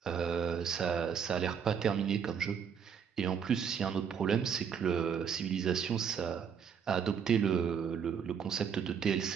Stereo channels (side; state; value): left; quieter; 7.2 dB